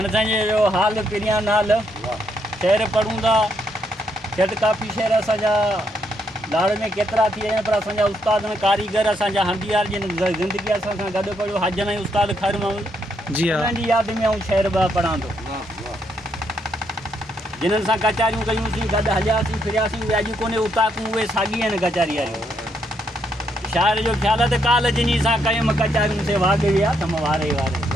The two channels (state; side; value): normal; both; correlation 0.75